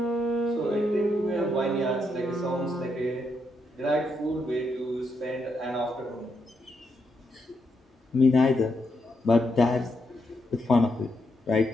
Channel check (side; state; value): both; normal; correlation 0.80